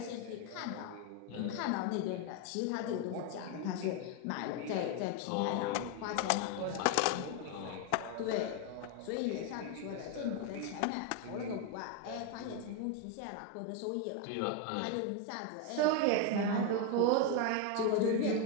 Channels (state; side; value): different; both; correlation 0.01